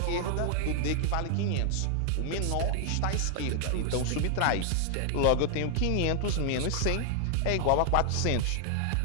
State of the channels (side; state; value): both; different; correlation 0.00